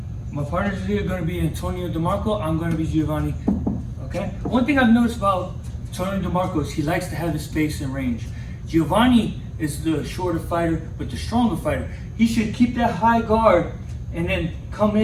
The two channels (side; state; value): both; identical; correlation 1.00